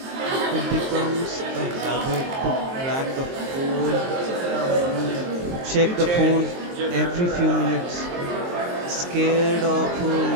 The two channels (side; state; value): left; late; 23 ms